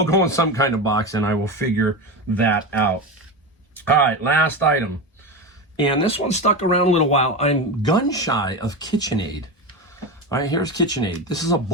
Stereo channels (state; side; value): normal; both; correlation 0.21